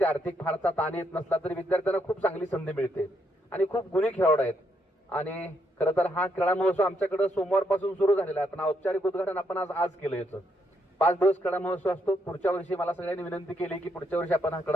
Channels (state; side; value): normal; both; correlation 0.76